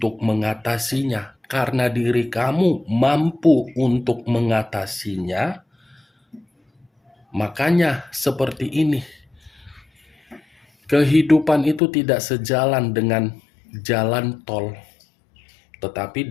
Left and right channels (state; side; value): drops out; right; at 11.8 s